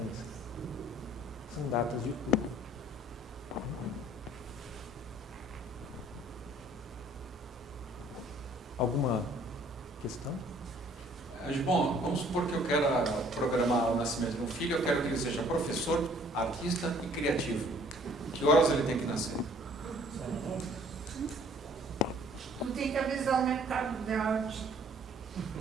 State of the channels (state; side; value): normal; both; correlation 0.58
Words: São datas de cura. Alguma questão? Bom, vamos supor que eu quero programar o nascimento de um filho, eu quero que ele seja professor, artista e criativo. Que horas ele tem que nascer? Tu tem que avisar o mercado de arte.